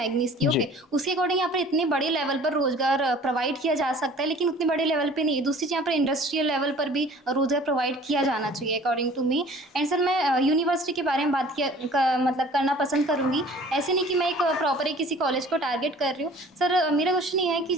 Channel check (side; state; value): both; normal; correlation 0.48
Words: की। ओके, उसके अकॉर्डिंग यहाँ पर इतने बड़े लेवल पर रोजगार प्रोवाइड किया जा सकता है, लेकिन उतने बड़े लेवल पे नहीं है। दूसरी चीज़ यहाँ पर इंडस्ट्रियल लेवल पर भी रोजगार प्रोवाइड किया जाना चाहिए according to me. And sir मैं यूनिवर्सिटी के बारे में बात मतलब करना पसंद करूँगी। ऐसे नहीं कि मैं एक प्रॉपर किसी कॉलेज को टारगेट कर रही हूँ। सर मेरा क्वेश्चन ये है कि